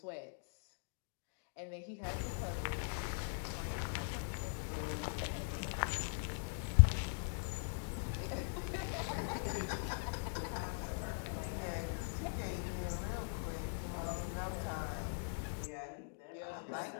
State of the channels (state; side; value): silent; right; digital silence